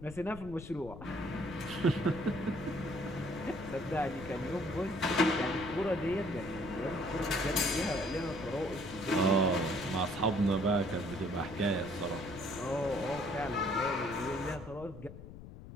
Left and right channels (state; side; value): noise; left; rumble, 14 dB below the sound